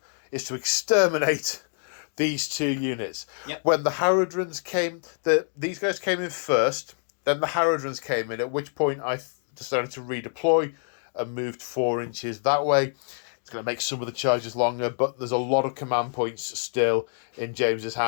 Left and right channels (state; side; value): silent; right; 61 dB below the other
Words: is to exterminate these 2 units. Yep. When the Haradrons came, these guys came in first, then the Haradrons came in, at which point I decided to redeploy and moved 4 inches that way. It's going to make some of the charges longer, but there's a lot of command points still in James's